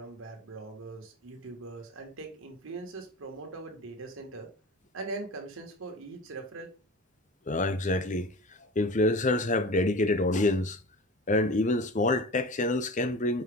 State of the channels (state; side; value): normal; both; correlation 0.34